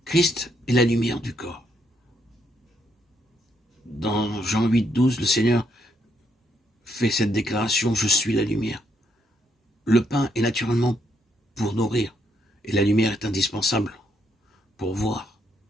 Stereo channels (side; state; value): both; normal; correlation 0.75